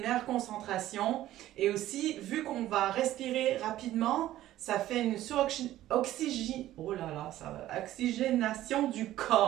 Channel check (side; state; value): left; quieter; 14.1 dB